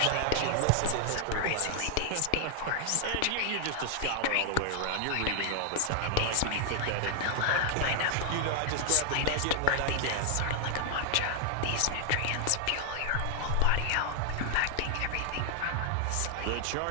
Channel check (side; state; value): both; different; correlation 0.00